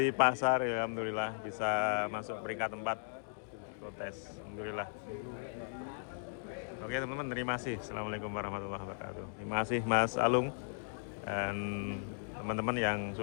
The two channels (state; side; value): silent; right; digital silence